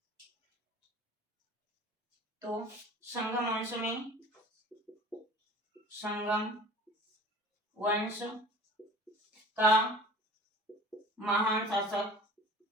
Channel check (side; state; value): both; normal; correlation 0.43